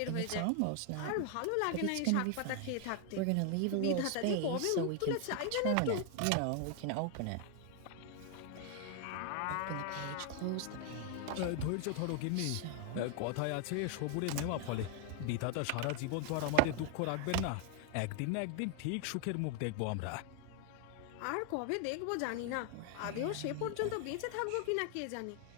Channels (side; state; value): both; different; correlation 0.00